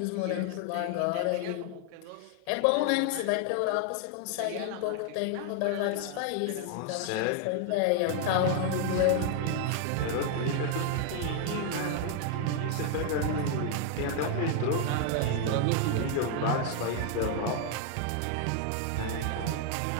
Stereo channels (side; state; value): both; different; correlation 0.00